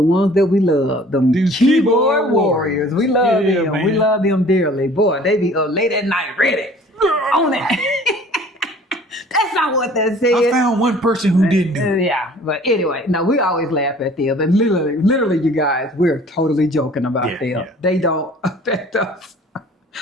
ones that we love. Them These keyboard keyboard warriors. warriors. We love Yeah, them. man. We love them dearly. Boy, they be up late at night ready. On that. That's not what that says. I found one person who didn't do it. Yeah, but anyway, no, we always laugh at them. And literally, you guys, we're totally joking about Yeah, them. yeah. They don't affect us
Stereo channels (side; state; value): both; normal; correlation 0.50